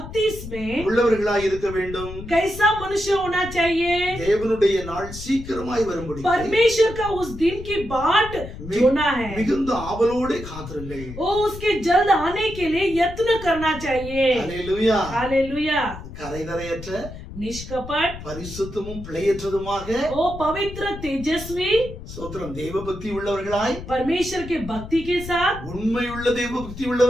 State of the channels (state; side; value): noise; left; rumble, 12 dB below the sound